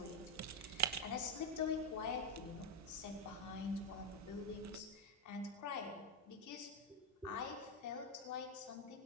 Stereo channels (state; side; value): normal; both; correlation 0.02